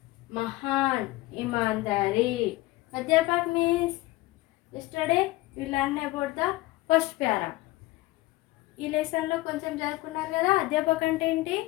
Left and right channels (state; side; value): quieter; right; 18.9 dB